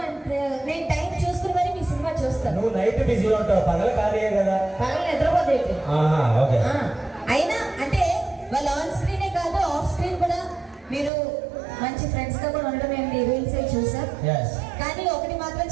అంటే నేను టైం చూసుకుని మరి మీ సినిమా చూస్తాను. నువ్వు నైట్ బిజీ ఉంటావు, పగలు ఖాళీయే కదా. పగలు నిద్రపోతే ఓకే. అయినా అంటే వాళ్ళ ఆన్ స్క్రీనే కాదు ఆఫ్ స్క్రీన్ కూడా మీరు మంచి ఫ్రెండ్స్ గా కూడా ఉండడం మేము మీ రీల్స్ చూసాం. కానీ ఒకటి మాత్రం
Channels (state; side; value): drops out; left; at 11.1 s